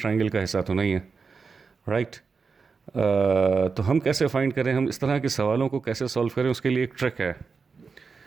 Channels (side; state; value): left; quieter; 5.0 dB